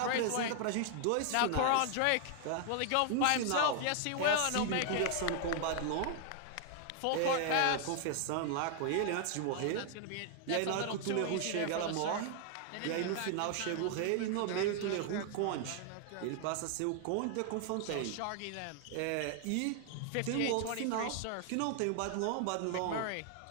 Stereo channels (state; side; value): different; both; correlation 0.00